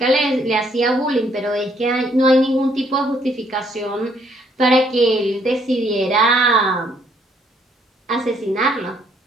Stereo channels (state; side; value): normal; both; correlation 0.68